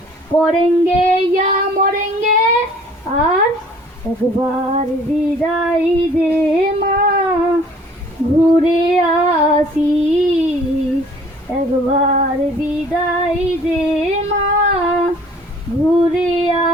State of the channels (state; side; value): normal; both; correlation 0.53